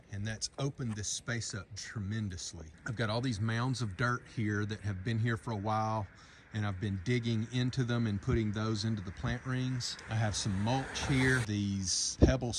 and that's opened this space up tremendously. I've got all these mounds of dirt here that have been here for a while, and I've been digging into them and putting those into the plant rings. I have some mulch here. These pebble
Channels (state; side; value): identical; both; correlation 1.00